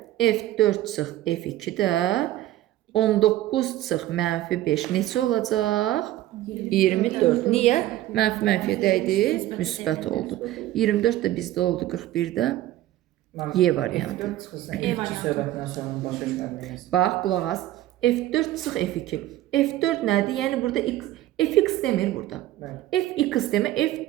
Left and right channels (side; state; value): left; quieter; 14.5 dB